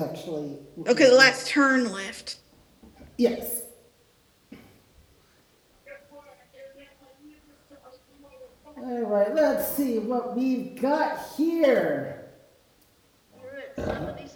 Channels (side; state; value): both; identical; correlation 1.00